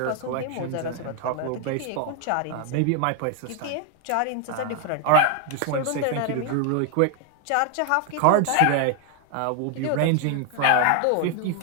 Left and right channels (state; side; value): different; both; correlation 0.00